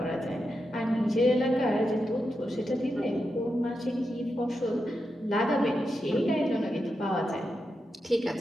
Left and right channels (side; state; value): both; normal; correlation 0.87